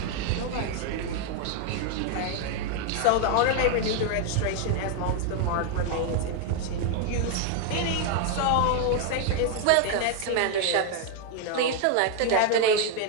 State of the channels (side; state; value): both; different; correlation 0.00